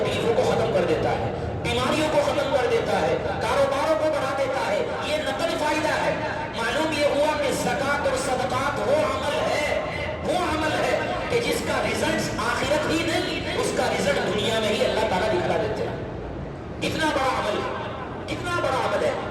کو ختم کر دیتا ہے، بیماریوں کو ختم کر دیتا ہے، کاروباروں کو بڑھا دیتا ہے. یہ نقل فائدہ ہے. معلوم یہ ہوا کہ زکوٰۃ اور صدقات وہ عمل ہے کہ جس کا رزلٹ آخرت ہی نہیں، اس کا رزلٹ دنیا میں ہی اللہ تعالیٰ دکھا دیتے ہیں. کتنا بڑا عمل ہے، کتنا بڑا عمل ہے.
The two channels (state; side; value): identical; both; correlation 1.00